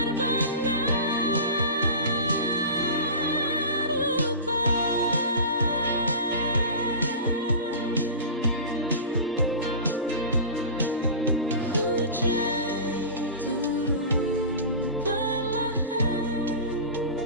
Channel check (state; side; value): inverted; both; correlation -0.32